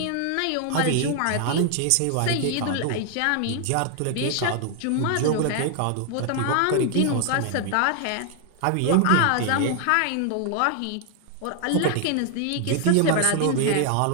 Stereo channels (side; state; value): both; different; correlation 0.00